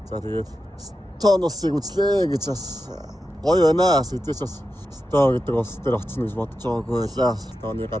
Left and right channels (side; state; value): both; normal; correlation 0.90